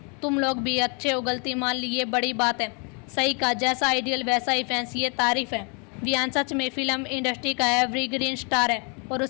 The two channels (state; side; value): quieter; right; 35.6 dB